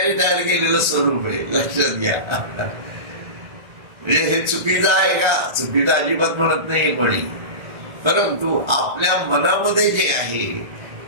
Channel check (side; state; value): left; late; 1.4 ms